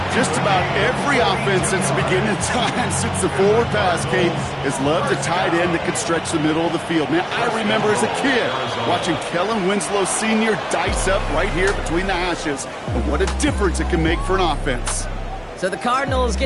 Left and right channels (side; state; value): both; identical; correlation 1.00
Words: Just about every offense since the beginning of time, since the forward pass, Kate, has loved a tight end that could stretch the middle of the field. Man, I remember as a kid watching Kellen Winslow Sr. dice up right here between the hashes. And what a difference it can make for an offense. So the Cardinals get